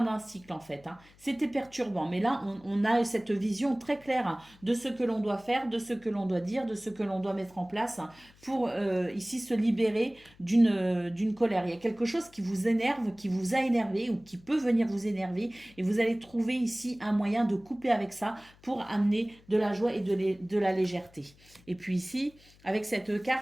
d'un cycle en fait. Hein. C'était perturbant, mais là on a cette vision très claire hein, de ce que l'on doit faire, de ce que l'on doit dire, de ce que l'on doit mettre en place hein, pour ici se libérer d'une colère. Il y a quelque chose qui vous énerve, qui vous a énervé ou qui peut venir vous énerver et vous allez trouver ici un moyen de couper avec ça pour amener de la joie et de la légèreté. Et puis ici, avec cette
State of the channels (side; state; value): left; noise; hum, 27 dB below the sound